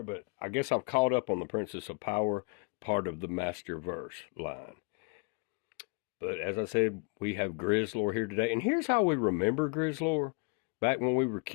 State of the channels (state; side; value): quieter; right; 35.0 dB